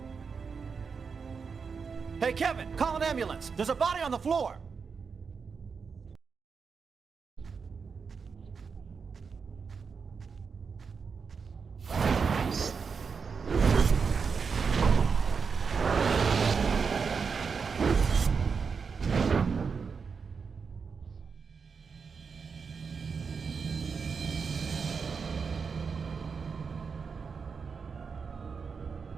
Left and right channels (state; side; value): quieter; left; 5.5 dB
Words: Hey, Kevin, call an ambulance. There's a body on the floor.